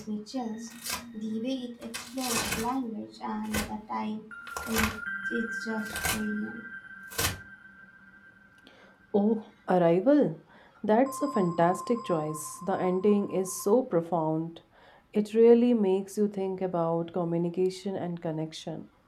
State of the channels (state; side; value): identical; both; correlation 1.00